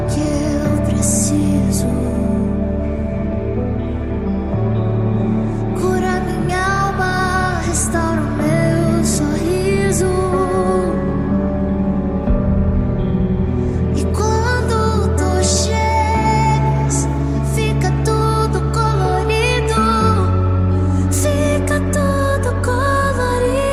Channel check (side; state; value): both; identical; correlation 1.00